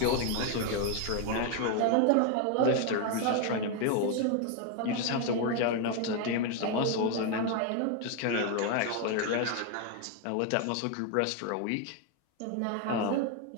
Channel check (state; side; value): different; both; correlation 0.01